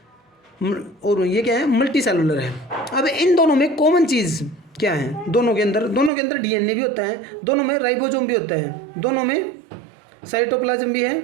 और ये क्या है, मल्टी सेलुलर है। अब इन दोनों में कॉमन चीज़ क्या है, दोनों के अंदर DNA भी होता है, दोनों में राइबोसोम भी होता है, दोनों में साइटोप्लाज्म भी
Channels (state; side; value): drops out; left; at 6.1 s